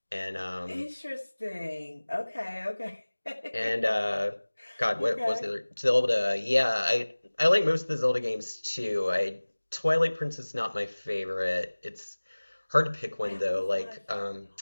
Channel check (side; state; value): both; inverted; correlation -1.00